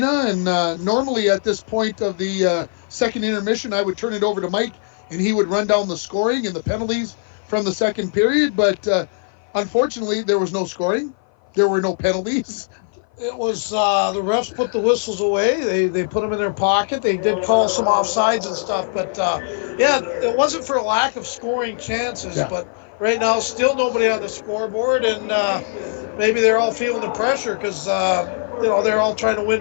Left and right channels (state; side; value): silent; right; 57 dB below the other